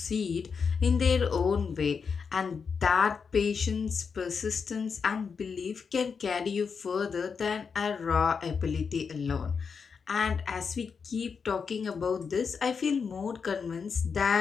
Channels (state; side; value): quieter; right; 5.8 dB